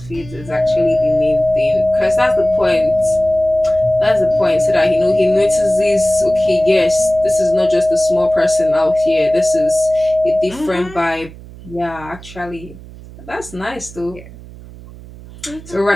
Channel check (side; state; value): right; noise; hum, 18 dB below the sound